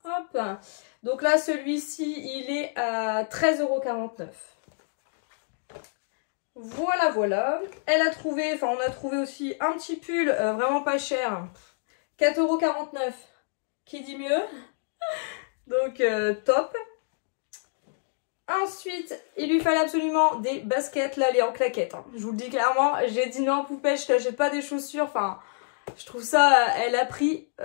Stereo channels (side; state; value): right; silent; digital silence